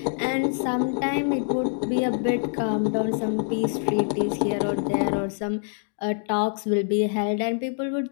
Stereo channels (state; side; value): silent; right; digital silence